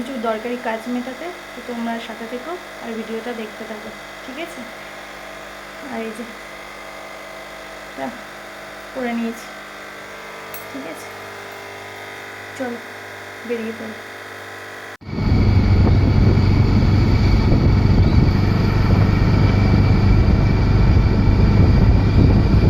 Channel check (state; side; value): identical; both; correlation 1.00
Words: দরকারি কাজ মেটাতে। তো তোমরা সাথে থেকো আর ভিডিওটা দেখতে থাকো, ঠিক আছে? আর এই যে করে নিয়েছি, ঠিক আছে, চল বেরিয়ে পড়ি।